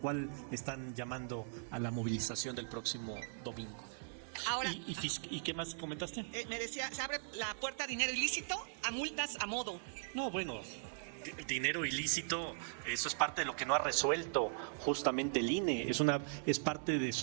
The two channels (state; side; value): silent; left; 52 dB below the other